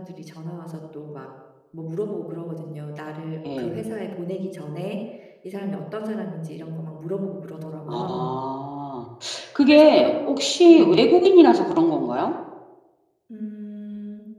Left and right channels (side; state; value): both; identical; correlation 1.00